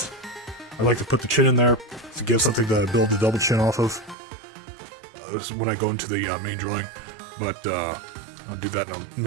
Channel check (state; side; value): drops out; left; at 4.2 s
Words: I like to put the chin in there to give something to build the double chin off of. This is when I go into the main drawing, but I'll do that